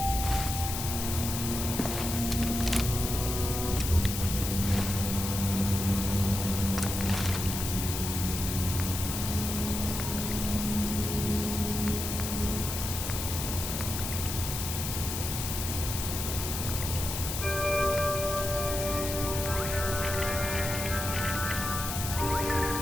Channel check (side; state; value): left; noise; hiss, 4 dB below the sound